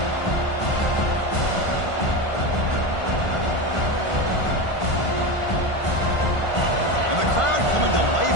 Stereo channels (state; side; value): late; right; 1.5 ms